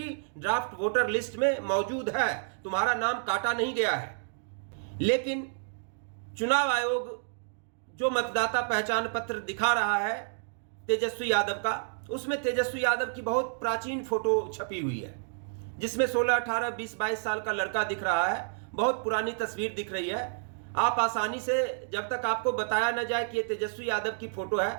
ड्राफ्ट वोटर लिस्ट में मौजूद है, तुम्हारा नाम काटा नहीं गया है। लेकिन चुनाव आयोग जो मतदाता पहचान पत्र दिखा रहा है तेजस्वी यादव का, उसमें तेजस्वी यादव की बहुत प्राचीन फोटो छपी हुई है, जिसमें 16, 18, 20, 22 साल का लड़का दिख रहा है। बहुत पुरानी तस्वीर दिख रही है। आप आसानी से, जब तक आपको बताया न जाए कि ये तेजस्वी यादव की फोटो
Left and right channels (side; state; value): left; silent; digital silence